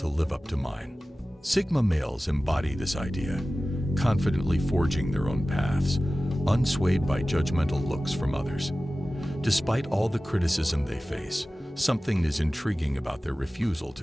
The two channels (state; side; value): normal; both; correlation 0.96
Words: live up to mine." Sigma males embody this idea, confidently forging their own paths, unswayed by judgmental looks from others. Despite all the criticism they face, something is intriguing about their refusal